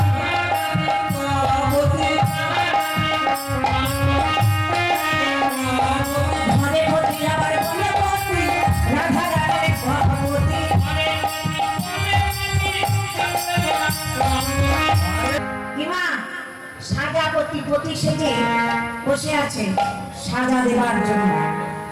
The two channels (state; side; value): identical; both; correlation 1.00